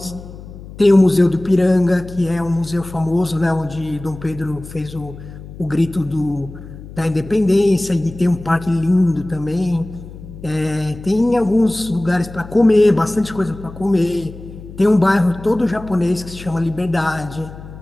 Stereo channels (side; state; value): left; noise; hum, 15 dB below the sound